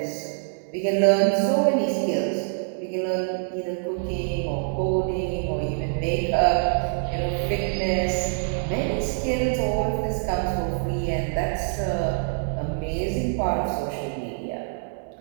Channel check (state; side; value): silent; left; 62 dB below the other